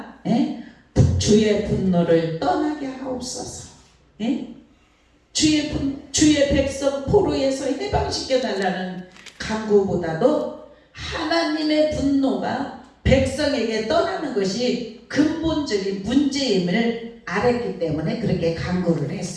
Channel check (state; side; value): identical; both; correlation 1.00